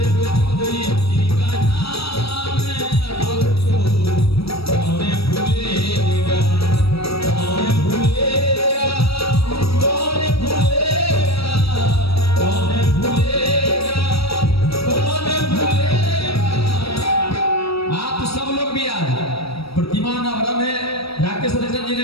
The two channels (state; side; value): late; right; 0.77 ms